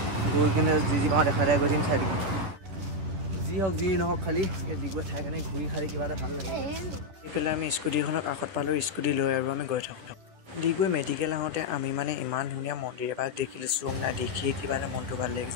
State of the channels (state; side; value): late; left; 10 ms